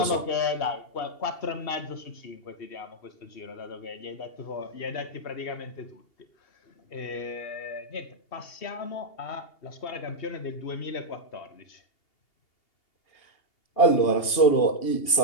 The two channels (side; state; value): right; late; 2.8 ms